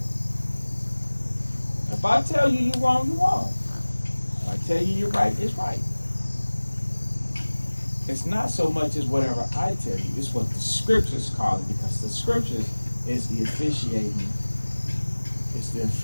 If I tell you you're wrong, you're wrong. If I tell you you're right, it's right. It's not so much as whatever I tell you, it's what the scriptures call it, because the scriptures is the officiating is the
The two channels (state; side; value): inverted; both; correlation -1.00